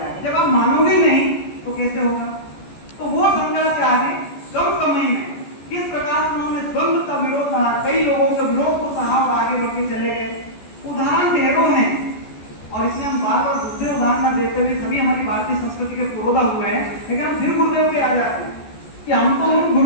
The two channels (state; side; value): late; right; 14 ms